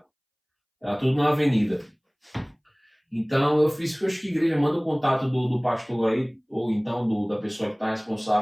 Era tudo na avenida. Então eu fiz que eu acho que a igreja manda o contato do pastor aí, ou então da pessoa que está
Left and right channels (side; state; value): both; identical; correlation 1.00